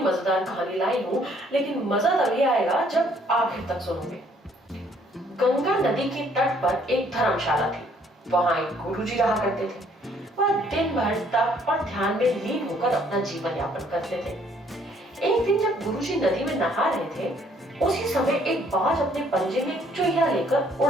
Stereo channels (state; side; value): normal; both; correlation 0.64